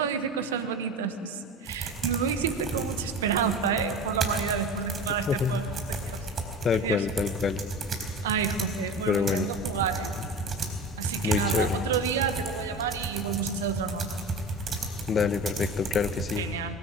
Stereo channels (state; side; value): normal; both; correlation 0.32